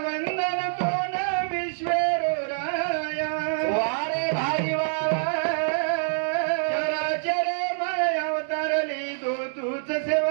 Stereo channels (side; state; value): left; silent; 61 dB below the other